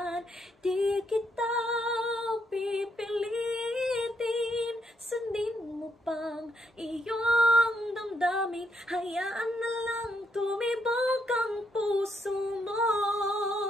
Di kita pipilitin, sundin mo pang iyong damdamin, hayaan na lang tumibok ang puso mo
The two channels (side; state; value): both; normal; correlation 0.76